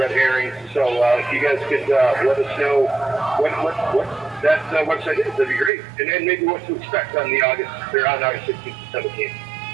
herrings. So if you guys could let us know what that website is, that'd be great. And then maybe what to expect on August 16th and 17th.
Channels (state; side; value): drops out; left; at 5.7 s